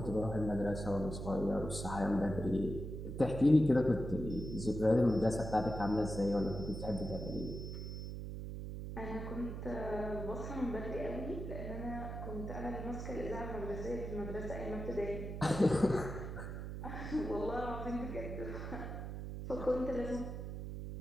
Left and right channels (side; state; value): right; noise; hum, 6 dB below the sound